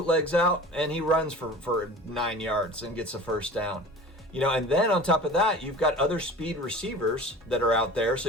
out and he runs for 9 yards and gets a first down. And then on top of that, you've got other speed receivers that are out there. So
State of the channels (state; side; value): normal; both; correlation 0.39